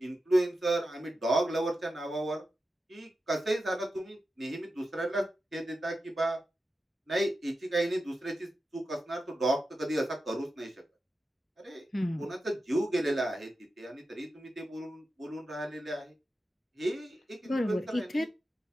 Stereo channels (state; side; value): normal; both; correlation 0.91